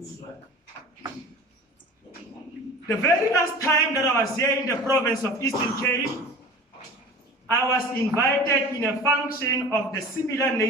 The very last time that I was here in the province of Eastern Cape, I was invited in a function of the similar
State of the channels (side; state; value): both; normal; correlation 0.39